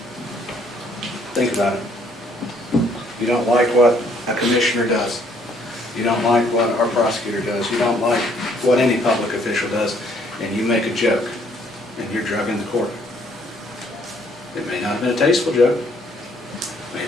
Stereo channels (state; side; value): normal; both; correlation 0.65